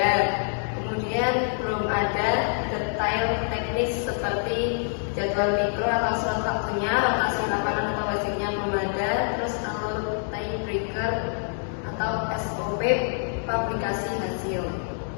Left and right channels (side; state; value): right; silent; digital silence